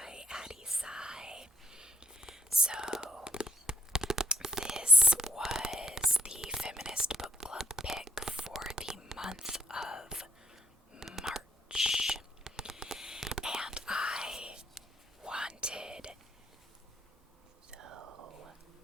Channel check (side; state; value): both; normal; correlation 0.75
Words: Addie Sai. So, this was the feminist book club pick for the month of March. And I wanted so